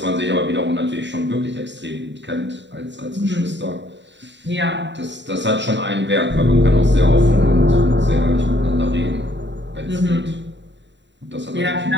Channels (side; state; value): left; late; 0.52 ms